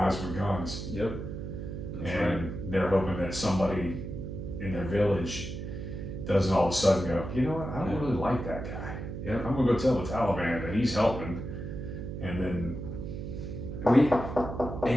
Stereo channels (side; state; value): right; noise; hum, 7 dB below the sound